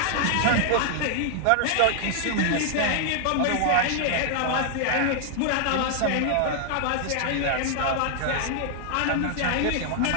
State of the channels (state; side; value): different; both; correlation 0.00